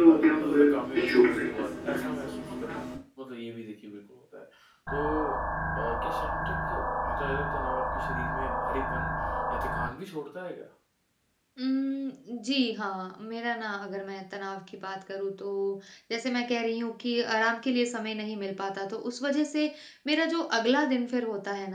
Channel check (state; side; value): identical; both; correlation 1.00